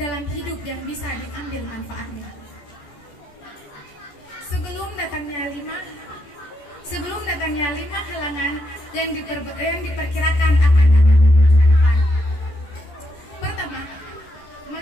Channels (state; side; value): late; right; 14 ms